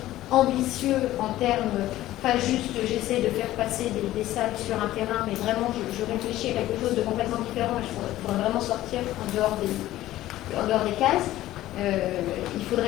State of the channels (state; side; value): quieter; right; 15.0 dB